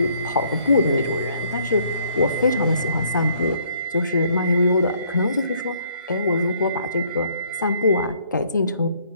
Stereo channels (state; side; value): inverted; both; correlation -0.65